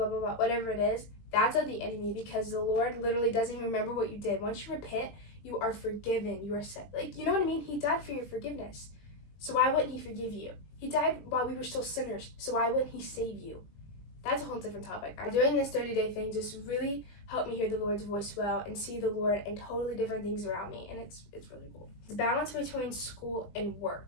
blah, blah, whatever it is. That's of the enemy, because the Lord literally doesn't even remember what you did. Once you repent, you are forgiven, you are set. Like, you know what I mean? He died for your forgiveness. So why wouldn't he forgive you? He died while we were still sinners, so why wouldn't he save you? That's a whole different topic. Doing this 30-day thing just really help me hear the Lord's voice well and see the Lord and totally different things around me, and it's really cool. The balance between school and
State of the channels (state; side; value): late; right; 20 ms